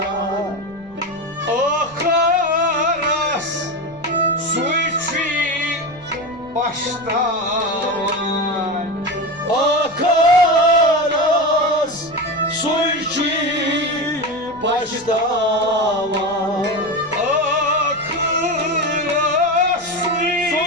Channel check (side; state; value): left; noise; rumble, 25 dB below the sound